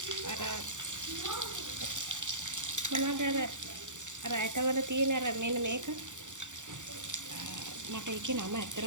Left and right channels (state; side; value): late; left; 0.86 ms